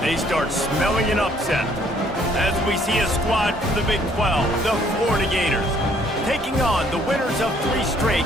they start smelling an upset. As we see a squad from the Big 12, the Florida Gators, taking on the winners of 3 straight,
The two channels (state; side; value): normal; both; correlation 0.63